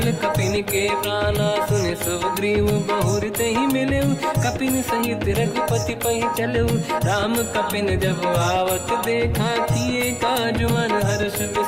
कपिन के प्राणा। सुन सुग्रीव बहुर तहि मिलऊ, कपिन सहित रघुपति पहि चलऊ। राम कपिन जब आवत देखा, किए काज मन हर्ष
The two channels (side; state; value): both; identical; correlation 1.00